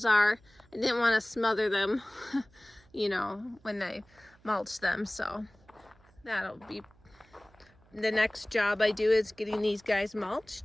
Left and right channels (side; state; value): right; noise; hum, 29 dB below the sound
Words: are. I didn't want to smother them, you know, when I mulch them. So that'll be the next job I do, is getting these guys